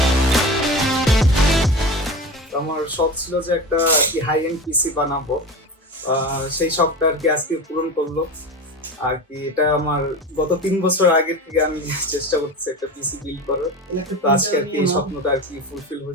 আমার শখ ছিল যে একটা হাই এন্ড পিসি বানাবো, সেই শখটা আর কি আজকে পূরণ করলো আর কি। এটা আমার গত 3 বছর আগে থেকে আমি চেষ্টা করতেছি একটা পিসি বিল্ড করার, তো আজকে আর কি এই স্বপ্নটা আর কি ফুলফিল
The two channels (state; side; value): normal; both; correlation 0.28